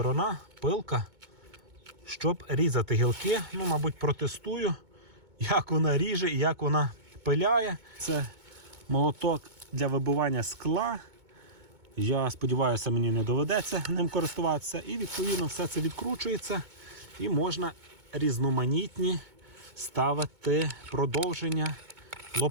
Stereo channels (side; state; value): left; late; 2.2 ms